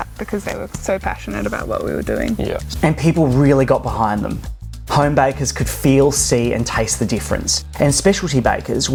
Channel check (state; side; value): identical; both; correlation 1.00